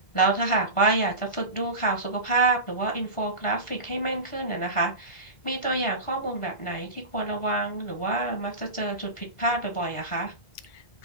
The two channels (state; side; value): late; right; 1.5 ms